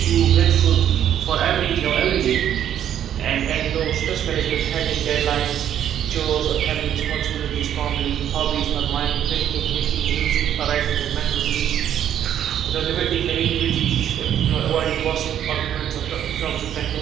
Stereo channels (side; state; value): left; quieter; 10.2 dB